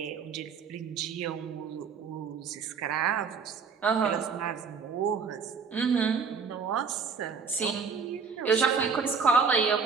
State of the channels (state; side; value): quieter; left; 5.6 dB